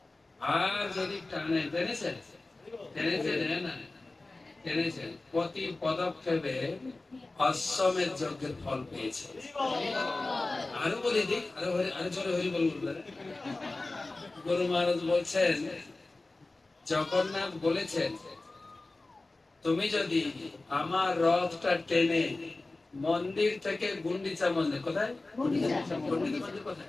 আর যদি টেনেছেন প্রতি পদক্ষেপে অশ্বমেধ যজ্ঞের ফল পেয়েছে। আরো বলে দিক, আরো জোরে হরি বলবেন। গুরু মহারাজ বলছেন, জগন্নাথ বলেছেন, তুমি যদি আমার রথটা টেনে মন্দির থেকে গুন্ডিচা মন্দির, কোথায় মন্দির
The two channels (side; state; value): right; quieter; 3.1 dB